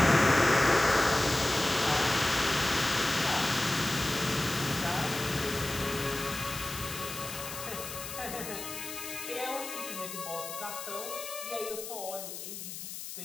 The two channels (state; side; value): noise; left; hiss, 9 dB below the sound